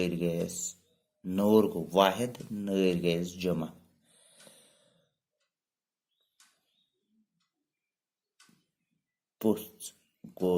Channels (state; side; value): identical; both; correlation 1.00